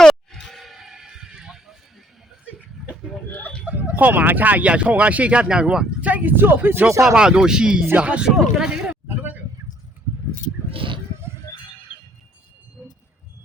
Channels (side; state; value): both; normal; correlation 0.63